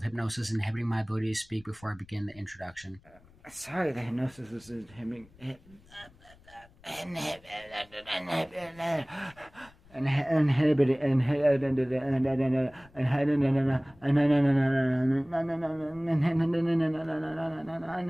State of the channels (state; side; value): noise; left; rumble, 27 dB below the sound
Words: hypnosis inhibiting my ability to speak before I begin the introduction. Sorry, the hypnosis was inhibiting.